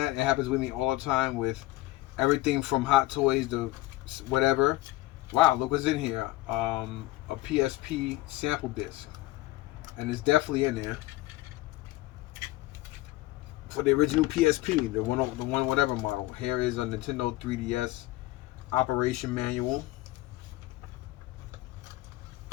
It happens with me all the time with everything from Hot Toys to whatever. Wow, look what's in here. A PSP sample disc. And it's definitely in there. for the original PSP, the one whatever model. Here is a Nintendo 3DS operation manual.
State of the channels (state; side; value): quieter; right; 18.0 dB